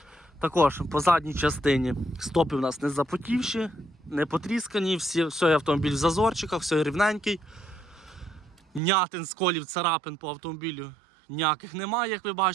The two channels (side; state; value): left; drops out; at 8.8 s